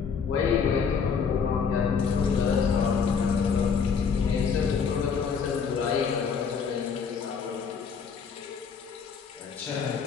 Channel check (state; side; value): quieter; right; 6.2 dB